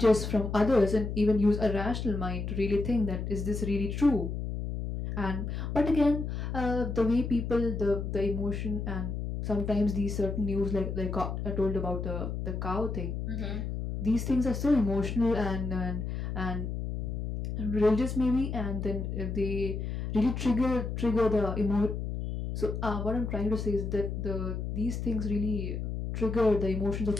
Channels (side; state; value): left; noise; hum, 4 dB below the sound